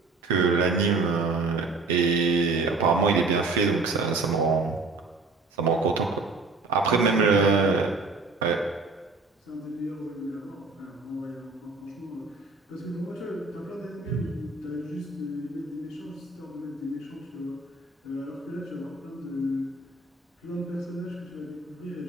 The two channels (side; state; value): left; quieter; 3.8 dB